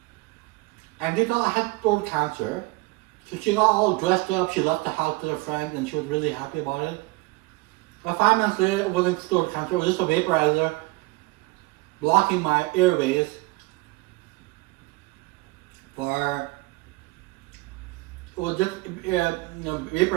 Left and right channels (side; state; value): left; quieter; 23.4 dB